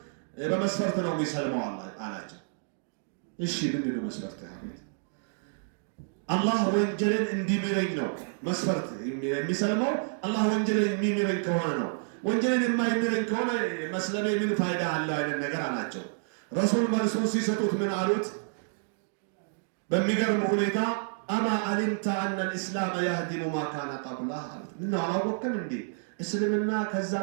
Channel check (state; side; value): silent; left; digital silence